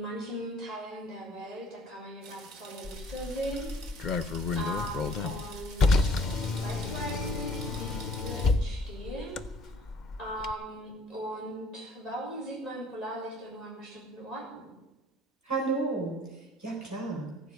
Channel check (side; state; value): both; normal; correlation 0.56